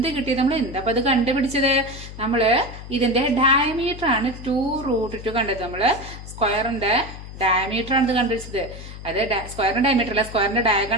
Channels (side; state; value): left; noise; hum, 13 dB below the sound